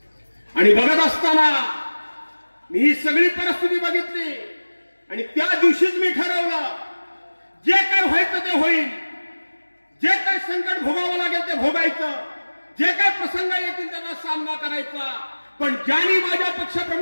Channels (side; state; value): both; inverted; correlation -1.00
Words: आणि बघत असताना मी ही सगळी परिस्थिती बघितली आणि त्या दिवशीच मी ठरवलं, जे काय व्हायचं ते होईल, जे काय संकट भोगावं लागेल ते भोगायचं, जे काय प्रसंग येतील त्यांना सामना करायचा. पण ज्यांनी माझ्या